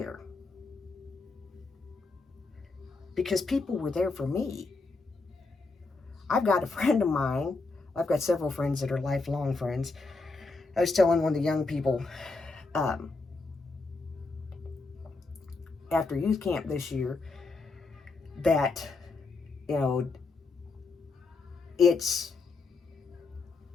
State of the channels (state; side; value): quieter; right; 3.8 dB